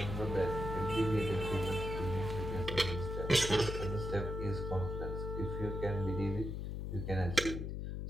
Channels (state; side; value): noise; left; hum, 4 dB below the sound